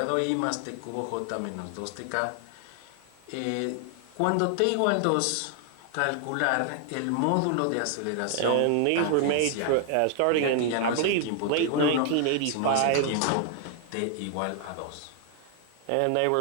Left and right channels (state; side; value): different; both; correlation 0.00